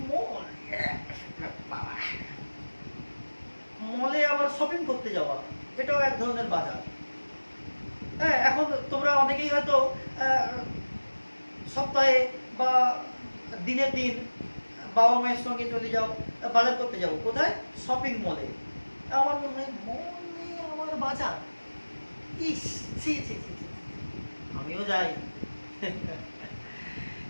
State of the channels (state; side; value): inverted; both; correlation -1.00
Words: মলে আবার শপিং করতে যাওয়া, এটাও এক ধরনের বাজার। হ্যাঁ, এখন তোমরা অনেকেই হয়তো সপ্তাহে বা দিনের দিন বাবা মায়ের সঙ্গে চলে যাও বাজার করতে যাও। কোথায়? শপিং মলে। আমার মনে হয় মনে আমার বাজার, ইস ছি ছি ছি, আমিও যাই